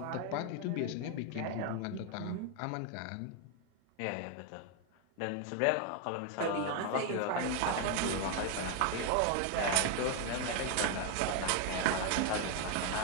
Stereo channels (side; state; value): both; different; correlation 0.01